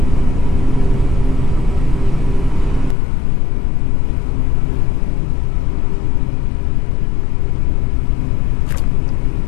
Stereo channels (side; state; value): right; drops out; at 3.0 s